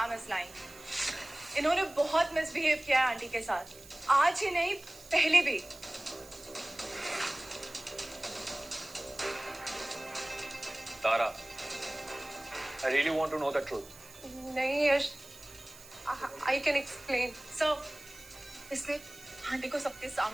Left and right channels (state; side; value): noise; right; hiss, 19 dB below the sound